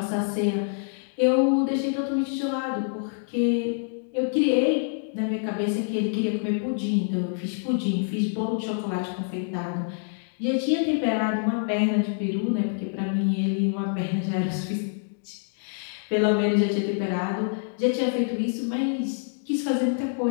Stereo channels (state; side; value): silent; right; digital silence